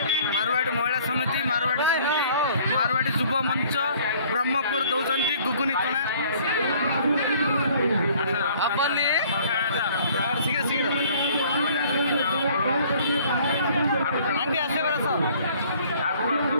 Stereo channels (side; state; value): both; inverted; correlation -0.55